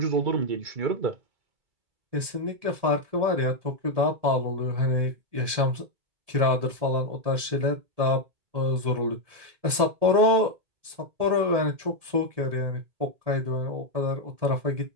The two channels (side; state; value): left; late; 1.7 ms